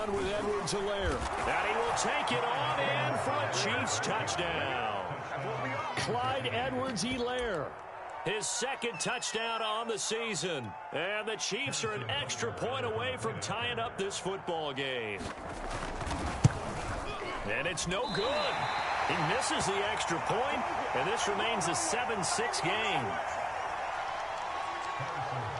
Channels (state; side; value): identical; both; correlation 1.00